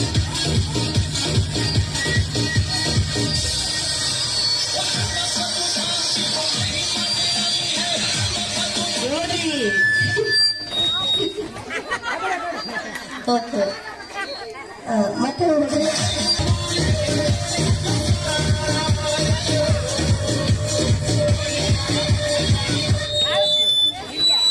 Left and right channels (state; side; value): identical; both; correlation 1.00